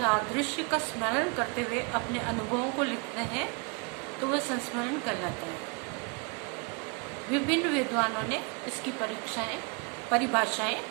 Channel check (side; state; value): left; quieter; 34.1 dB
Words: दृश्य का स्मरण करते हुए अपने अनुभवों को लिखते हैं तो वह संस्मरण कहलाता है। विभिन्न विद्वानों ने इसकी परिभाषाएं